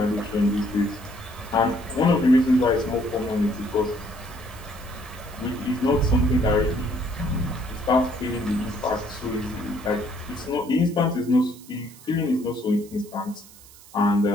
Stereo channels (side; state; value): right; noise; hiss, 21 dB below the sound